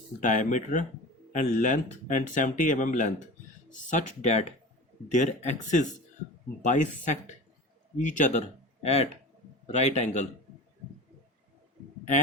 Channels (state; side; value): normal; both; correlation 0.33